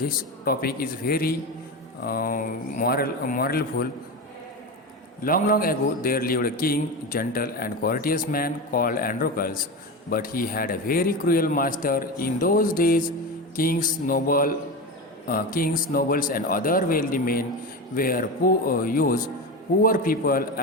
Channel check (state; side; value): normal; both; correlation 0.22